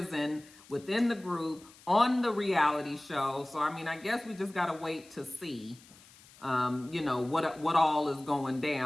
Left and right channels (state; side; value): noise; left; hiss, 24 dB below the sound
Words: within the group on the reality show. So, I guess we just got to wait to see, what all is going